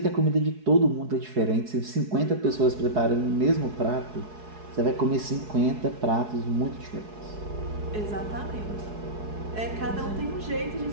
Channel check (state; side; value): late; left; 4.7 ms